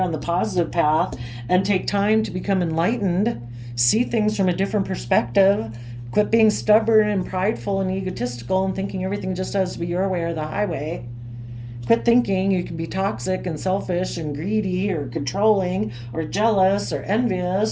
on the positive path and take time to become enlightened, see things from a different perspective, quit being stubborn and prideful and egotistical and thinking everything just has to be your way or the highway. Quit thinking you can be toxic and selfish and greedy or controlling or jealous or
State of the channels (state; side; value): identical; both; correlation 1.00